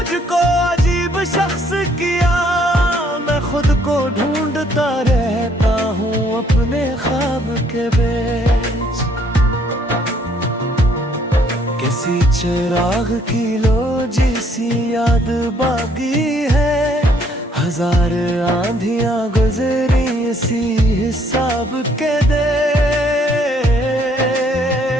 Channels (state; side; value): normal; both; correlation 0.65